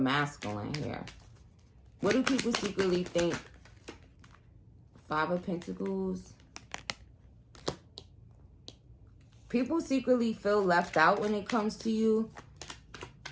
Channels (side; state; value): both; identical; correlation 1.00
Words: here. What do people secretly think? 5 of Pentacles. People secretly feel left out when it comes to you.